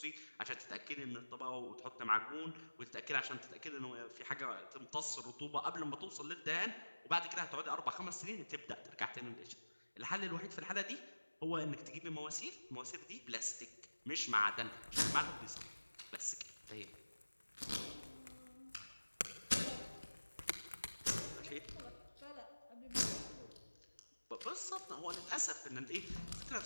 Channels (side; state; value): both; inverted; correlation -1.00